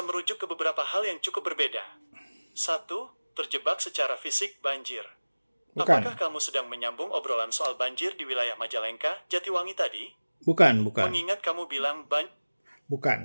merujuk ke beberapa hal yang cukup berbeda. 1. Terjebak secara fisik banjir. bukan, Apakah kamu sedang menyambung obrolan soal banjir di wilayah Majalengka, Jatiwangi tadi? bukan. Mengingat kamu bilang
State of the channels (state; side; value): inverted; both; correlation -1.00